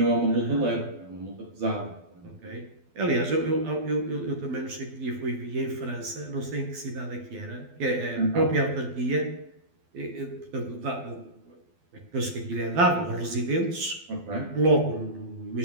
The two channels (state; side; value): late; left; 12 ms